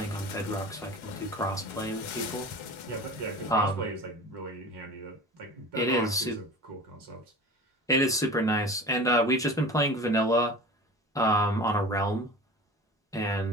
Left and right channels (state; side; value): normal; both; correlation 0.37